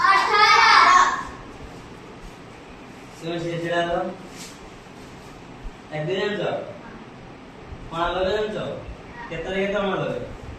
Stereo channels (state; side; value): identical; both; correlation 1.00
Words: তুমি সেটা দাও এক দুই জানো কোন লগে জানো কত রেখে তো আমার লগে